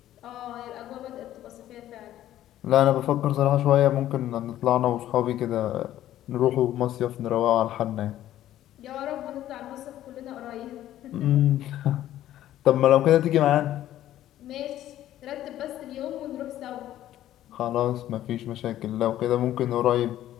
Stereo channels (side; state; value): right; quieter; 12.9 dB